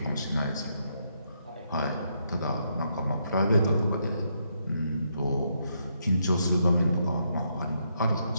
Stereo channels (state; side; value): inverted; both; correlation -0.78